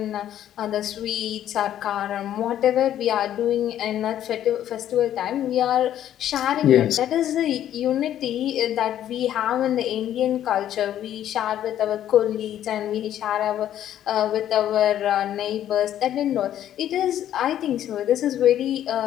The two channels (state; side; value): quieter; right; 11.3 dB